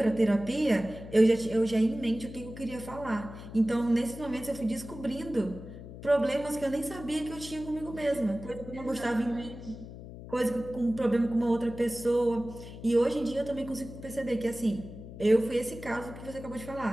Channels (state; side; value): noise; left; hum, 13 dB below the sound